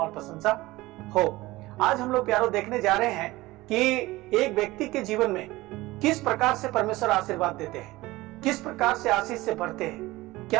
प्रशंसा हो। आज हम लोग प्यारो देखने जा रहे हैं कि एक व्यक्ति के जीवन में किस प्रकार से परमेश्वर आशीर्वाद देते हैं, किस प्रकार से आशीष से भरते हैं,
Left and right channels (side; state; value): left; quieter; 19.4 dB